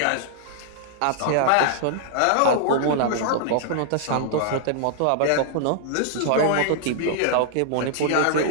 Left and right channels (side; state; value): both; different; correlation -0.01